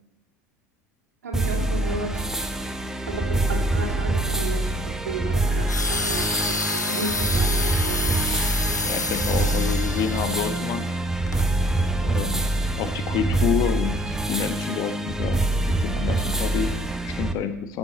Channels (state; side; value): normal; both; correlation 0.58